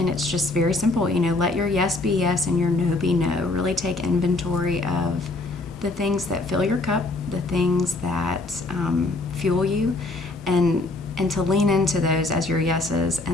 it's just very simple, let your yes be yes and your no be no. Really take inventory of the things that fill your cup, the things that fuel you, and to lean into those as your yeses,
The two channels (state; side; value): quieter; right; 3.0 dB